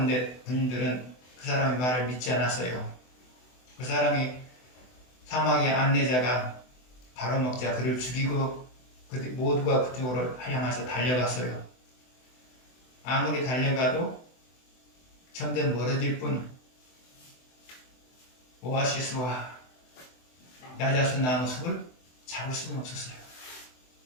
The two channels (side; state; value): right; late; 24 ms